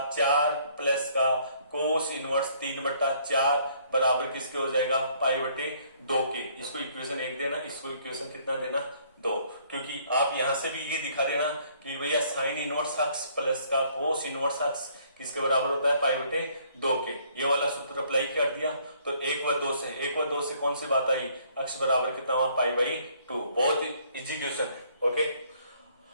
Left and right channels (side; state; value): both; inverted; correlation -0.63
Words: प्लस का कोस इनवर्स 3/4 बराबर किसके हो जाएगा पाई/2 के। इसको इक्वेशन 1 देना, इसको इक्वेशन कितना देना 2, क्योंकि आप यहां से भी ये दिखा देना कि भैया साइन इनवर्स अक्स प्लस का कोस इनवर्स अक्स किसके बराबर होता है पाई/2 के। ये वाला सूत्र अप्लाई कर दिया तो 1 व 2 से कौन सी बात आई, अक्स बराबर कितना हुआ पाई/2। बहुत इजी क्वेश्चन है। ओके,